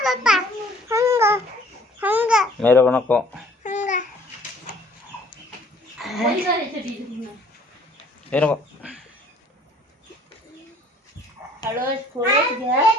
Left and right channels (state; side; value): normal; both; correlation 0.56